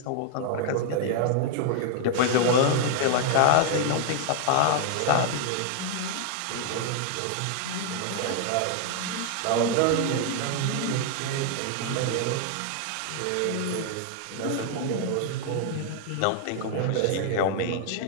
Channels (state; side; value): different; both; correlation 0.00